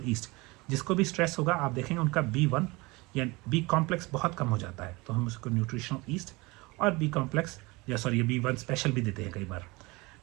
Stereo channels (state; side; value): quieter; left; 23.9 dB